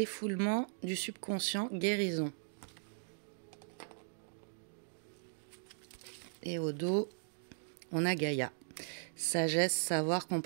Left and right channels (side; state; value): left; silent; digital silence